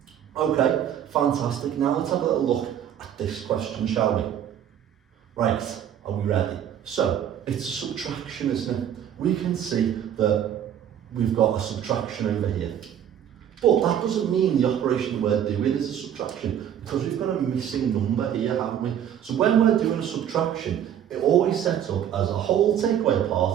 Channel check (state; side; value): quieter; left; 9.8 dB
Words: Okay, fantastic. Now let's have a little look at this question, shall we? Right, are we ready? So, it's a subtraction, isn't it? We can see that we've got a subtraction over here. But that doesn't mean the operation we're doing is a subtraction, because we've got a missing number here, haven't we? So when we're doing a subtraction, it always sets up as a whole take away a